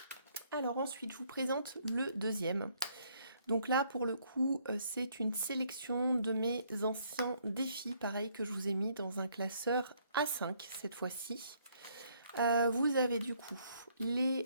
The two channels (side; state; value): both; inverted; correlation -0.67